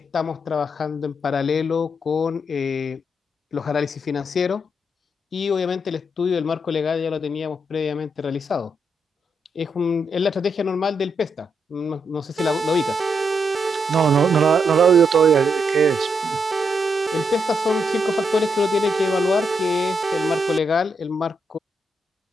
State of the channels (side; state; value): both; normal; correlation 0.80